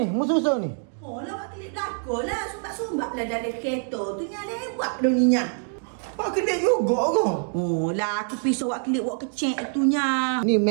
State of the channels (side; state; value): left; silent; 57 dB below the other